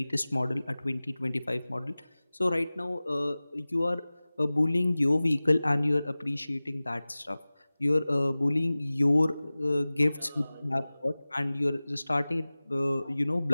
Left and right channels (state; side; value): inverted; both; correlation -0.98